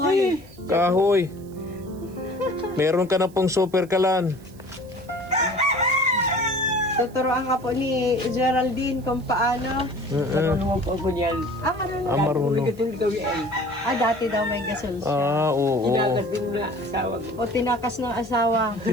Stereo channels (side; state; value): right; noise; hiss, 26 dB below the sound